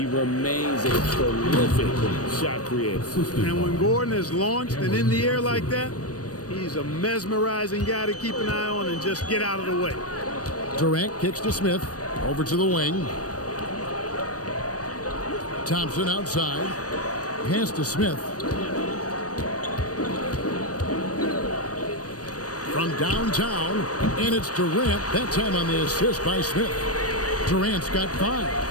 remains a prolific shot creator. And when Gordon is launched and in the air like that, he's a mesmerizing guy to keep an eye on and just get out of the way. Durant kicks to Smith, over to the wing. Thompson outside. Pass to Smith. From downtown, and it's Durant, that time on the assist by Smith. Durant's got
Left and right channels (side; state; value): right; late; 0.67 ms